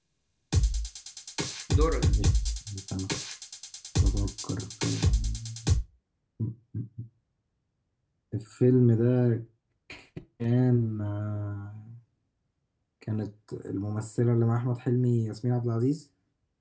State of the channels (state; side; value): identical; both; correlation 1.00